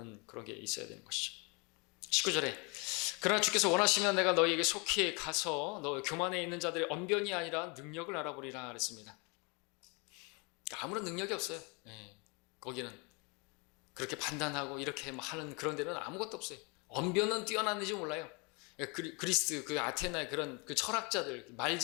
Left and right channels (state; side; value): quieter; right; 30.7 dB